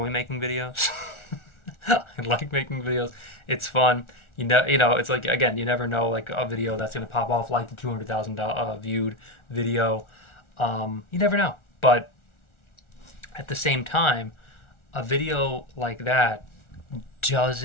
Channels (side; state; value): right; late; 1.4 ms